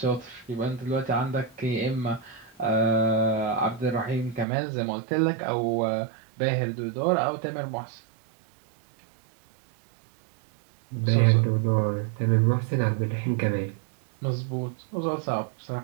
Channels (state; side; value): drops out; left; at 4.5 s